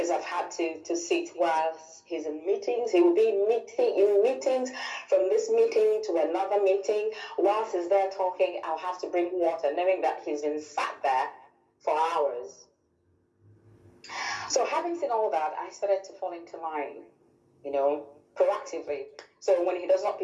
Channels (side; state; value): both; identical; correlation 1.00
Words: I've had to sit while he's in meetings. He will be in meetings, from this meeting to another meeting. Whilst he's there talking, I'll have to bring water, knowing that he's been sat there for hours. So having seen all that, I started to fall into line, proactively. So when he does not